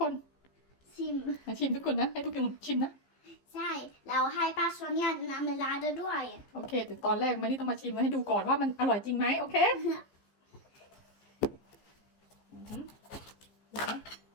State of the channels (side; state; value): right; late; 15 ms